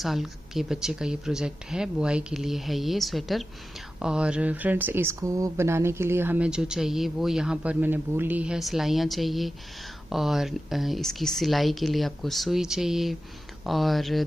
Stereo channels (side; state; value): both; normal; correlation 0.93